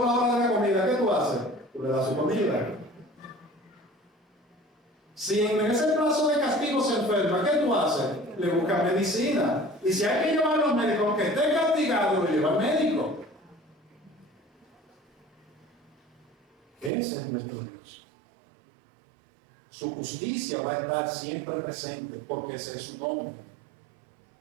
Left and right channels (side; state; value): left; drops out; at 16.9 s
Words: la hora de la comida, ¿qué tú haces? Tú le das su comida. Si en ese plazo de castigo se enferma, ¿qué tú haces? Le buscas medicina. Y si hay que llevarlo al médico, aunque esté castigado, lo lleva al médico. Ese es nuestro Dios. Su justicia va a estar siempre presente, porque ese es su nombre.